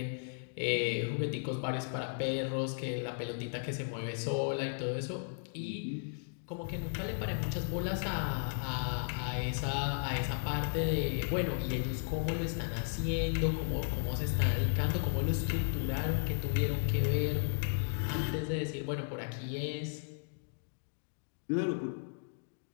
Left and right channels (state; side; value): silent; right; digital silence